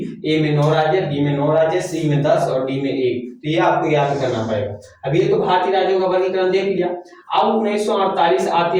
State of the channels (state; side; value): identical; both; correlation 1.00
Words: ए में 9 राज्य, बी में 9 राज्य, सी में 10 और डी में 1। तो ये आपको याद करना पड़ेगा। अब ये तो भारतीय राज्यों का वर्गीकरण देख लिया। अब 1948 आते